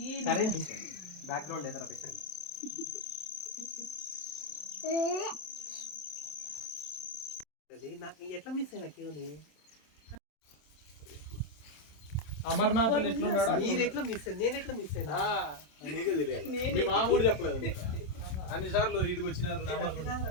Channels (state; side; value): late; right; 27 ms